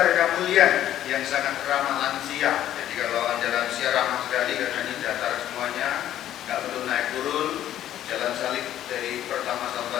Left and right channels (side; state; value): right; quieter; 11.9 dB